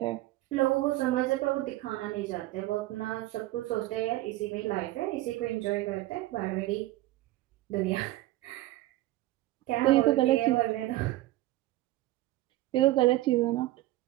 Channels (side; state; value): left; quieter; 17.0 dB